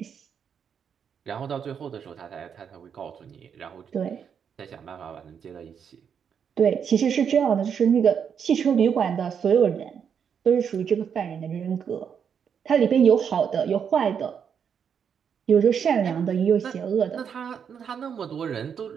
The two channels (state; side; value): quieter; left; 7.4 dB